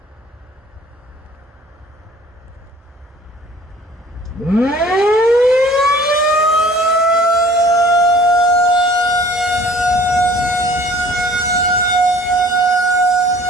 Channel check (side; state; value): both; normal; correlation 0.50